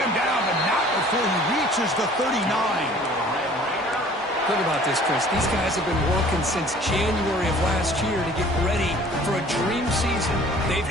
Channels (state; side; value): normal; both; correlation 0.51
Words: him down, but not before he reaches the 39. Think about this, Chris. These guys have been working since January of last year to get ready for a dream season. They've